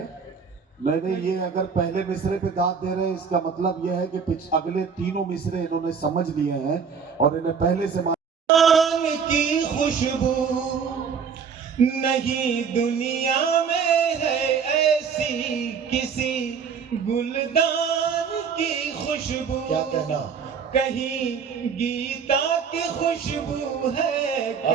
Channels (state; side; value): quieter; left; 6.4 dB